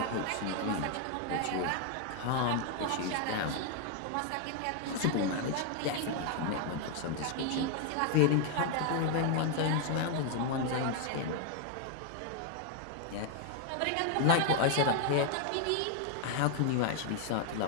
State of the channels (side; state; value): both; different; correlation 0.00